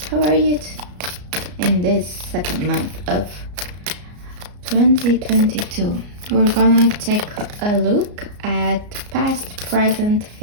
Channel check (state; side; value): late; left; 33 ms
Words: how are you in this second month of 2022? We're gonna take a look at past, present,